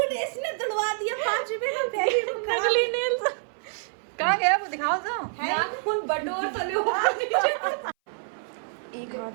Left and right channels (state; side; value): silent; left; 58 dB below the other